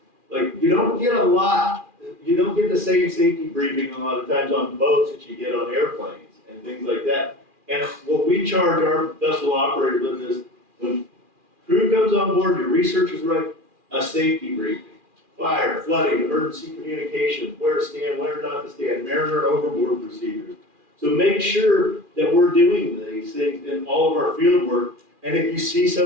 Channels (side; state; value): left; late; 2.4 ms